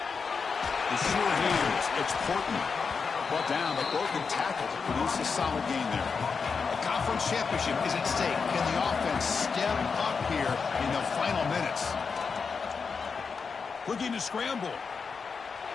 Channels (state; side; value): quieter; right; 5.3 dB